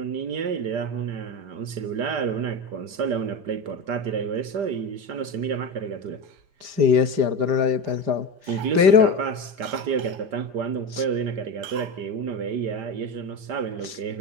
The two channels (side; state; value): left; late; 5.0 ms